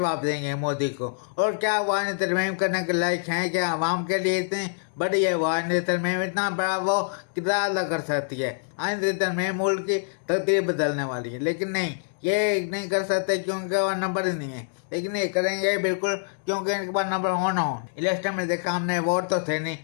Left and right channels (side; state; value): right; silent; digital silence